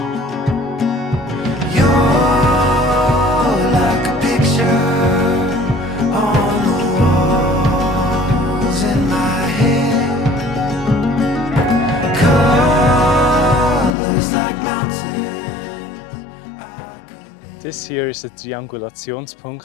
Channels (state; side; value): drops out; right; at 14.0 s